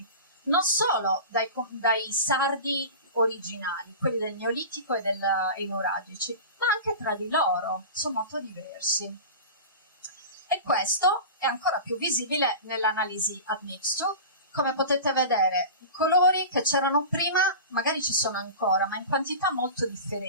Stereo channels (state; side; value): inverted; both; correlation -0.32